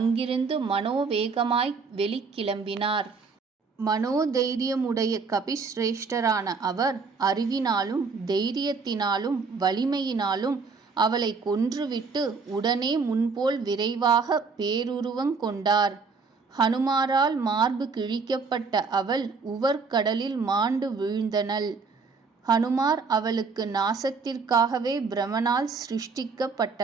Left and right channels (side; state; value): left; quieter; 4.8 dB